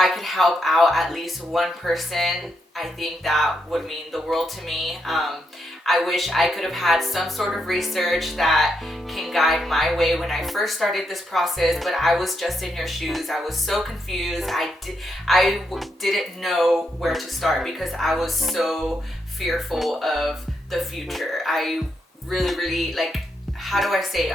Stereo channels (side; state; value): both; normal; correlation 0.81